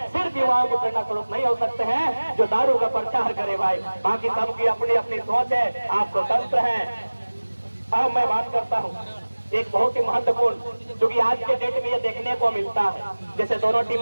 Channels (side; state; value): both; inverted; correlation -1.00